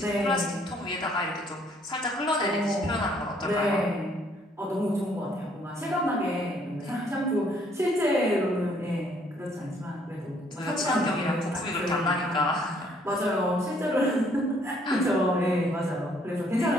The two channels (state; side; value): normal; both; correlation 0.65